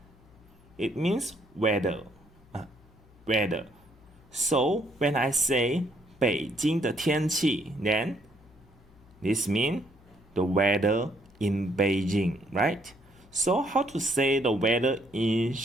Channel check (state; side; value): noise; left; hum, 27 dB below the sound